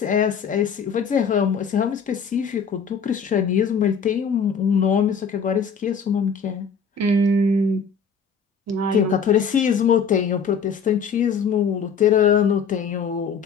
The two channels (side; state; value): right; quieter; 5.9 dB